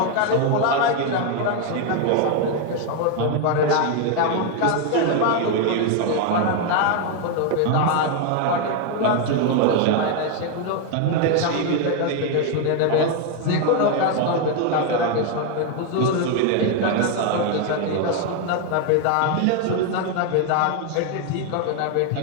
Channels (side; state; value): both; different; correlation 0.01